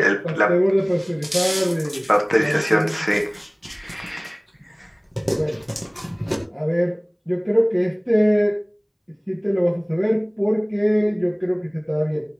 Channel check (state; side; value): identical; both; correlation 1.00